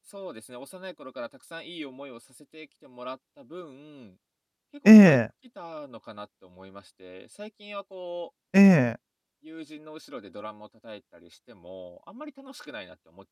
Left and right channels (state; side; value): identical; both; correlation 1.00